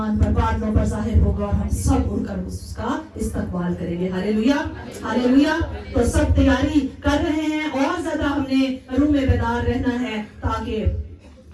پر بادلوں پر ظاہر ہوگا اور ہم سب اڑ کر اس کا استقبال کریں گے۔ ہاللیلویا، ہاللیلویا۔ تو سب تیاری کر رہے ہیں، اور زیادہ ہم نے روح میں بیدار رہنا ہے تاکہ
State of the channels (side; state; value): both; identical; correlation 1.00